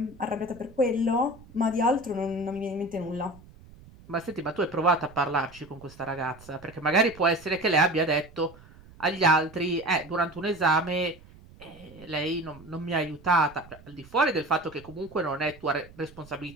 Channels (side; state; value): right; noise; rumble, 22 dB below the sound